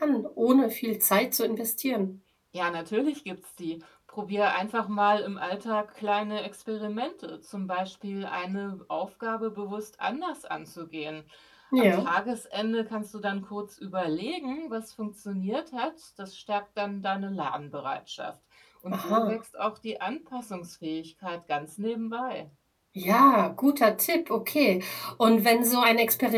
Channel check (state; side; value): identical; both; correlation 1.00